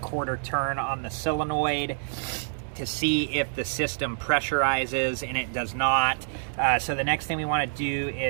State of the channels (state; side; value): silent; left; digital silence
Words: turn on the solenoid to see if the system pressurizes, and it does not. So the next thing we want to do